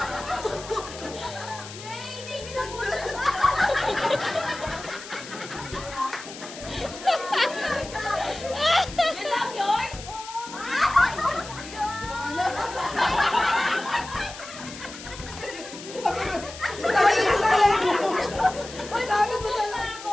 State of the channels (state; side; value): noise; left; hiss, 13 dB below the sound